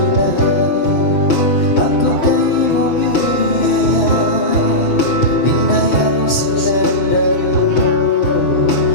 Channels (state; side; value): late; right; 6.0 ms